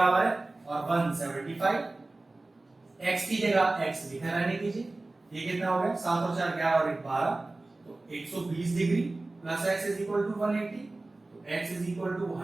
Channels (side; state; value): left; quieter; 3.0 dB